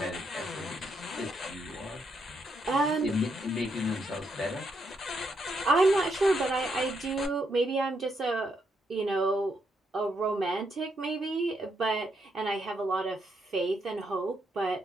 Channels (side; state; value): both; normal; correlation 0.78